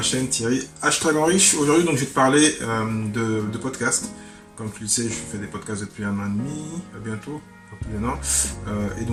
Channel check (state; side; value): identical; both; correlation 1.00